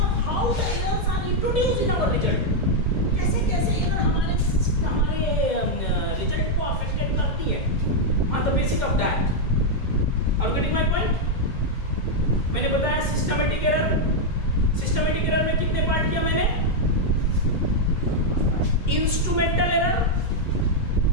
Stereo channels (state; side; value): late; right; 2.2 ms